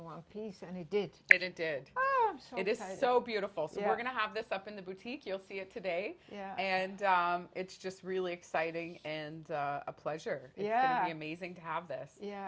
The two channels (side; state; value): both; identical; correlation 1.00